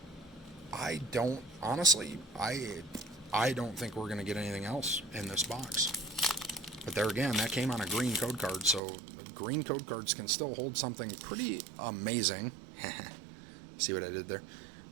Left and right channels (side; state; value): left; drops out; at 8.8 s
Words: I don't think we're going to get anything else in this box. But there again, that came on a green code card, so green code cards can still hold something pretty amazing. See what I did there?